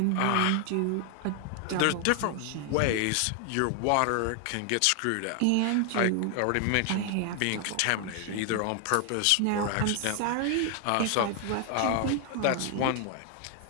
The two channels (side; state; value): both; different; correlation 0.00